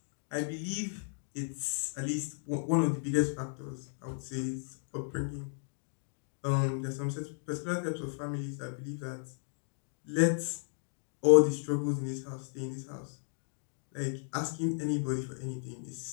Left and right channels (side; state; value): right; silent; digital silence